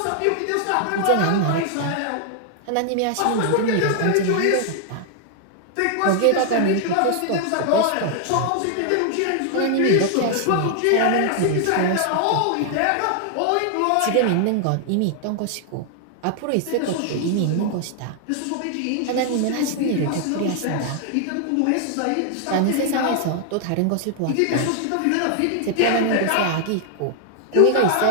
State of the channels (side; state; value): both; different; correlation 0.00